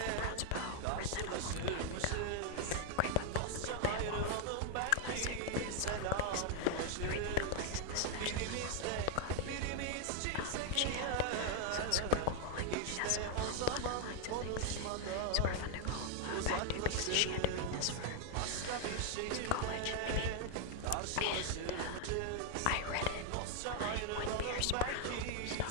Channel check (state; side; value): different; both; correlation 0.00